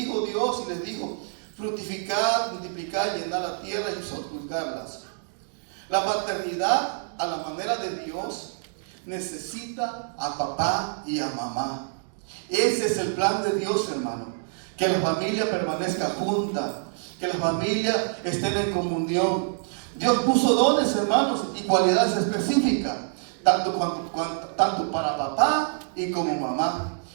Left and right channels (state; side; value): silent; left; digital silence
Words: Dios y les dijo, fructificad, multiplicad, llenad la tierra y ocultarlas. La paternidad, a la manera de Dios, necesita a papá y a mamá. Ese es el plan de Dios, hermano. Que la familia permanezca junta, que la familia esté en comunión. Dios puso dones, hermanos, y cualidades específicas, tanto para papá y como mamá.